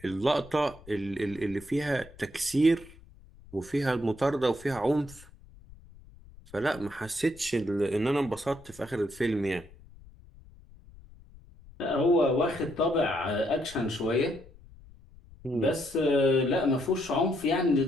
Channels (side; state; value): left; noise; rumble, 22 dB below the sound